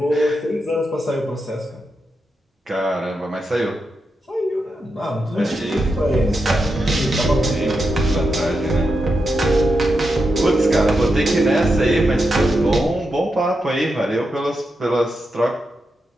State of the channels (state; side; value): normal; both; correlation 0.86